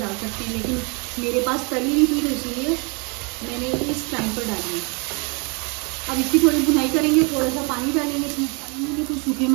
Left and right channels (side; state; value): left; quieter; 32.8 dB